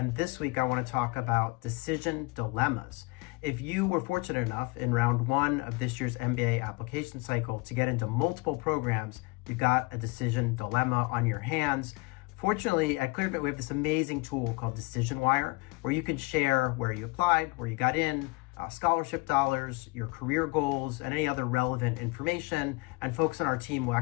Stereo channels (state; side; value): quieter; right; 24.4 dB